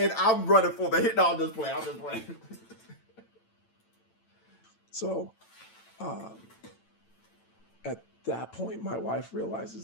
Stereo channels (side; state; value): right; late; 9.0 ms